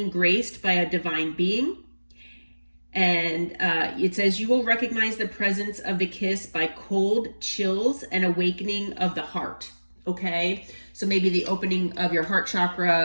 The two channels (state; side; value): inverted; both; correlation -1.00